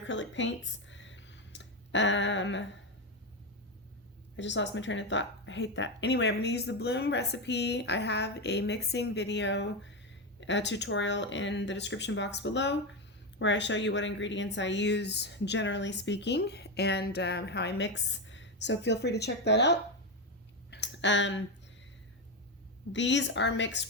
paints. I just lost my train of thought. I hate that. Anyway, I'm going to use the Bloom recipe. I have a mixing video tutorial in the description box below where I show you what ingredients I use generally speaking and how I mix, so feel free to check that out. These are mixed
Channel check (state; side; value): normal; both; correlation 0.11